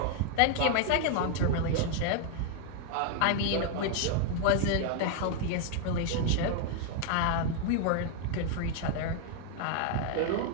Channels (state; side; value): different; both; correlation 0.00